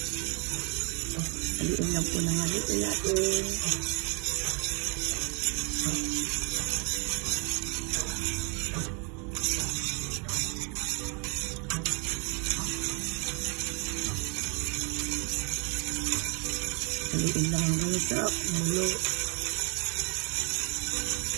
Haluin lang po ng haluin natin. Haluin lang hanggang sa kumulo.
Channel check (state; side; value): quieter; left; 35.1 dB